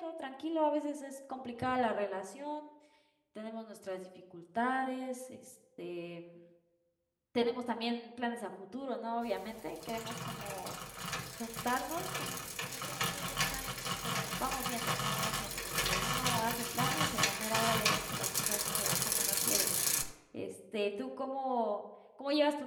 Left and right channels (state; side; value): identical; both; correlation 1.00